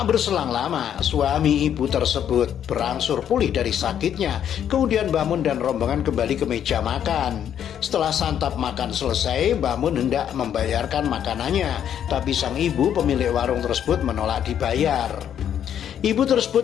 berselang lama, suami ibu tersebut berangsur pulih dari sakitnya. Kemudian Mbah Mun dan rombongan kembali ke meja makan. Setelah santap makan selesai, Mbah Mun hendak membayarkan makanannya, tapi sang ibu pemilik warung tersebut menolak dibayar. Ibu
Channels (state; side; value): quieter; right; 9.5 dB